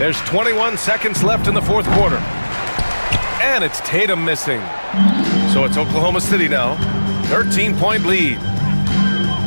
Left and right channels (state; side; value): inverted; both; correlation -1.00